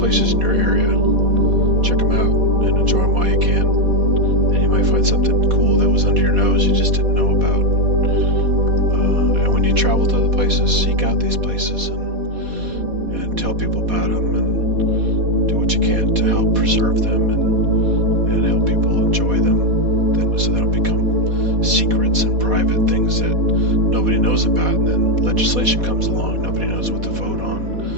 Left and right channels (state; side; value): late; left; 4.2 ms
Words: in your area. Check them out and enjoy them while you can. And you might find something cool that was under your nose you just didn't know about. And when you travel to other places, seek out these places and tell people about them and do what you can to help preserve them and help people enjoy them, so they don't become secrets and private things that nobody knows about. And then legislation comes along, nobody knows what to vote on.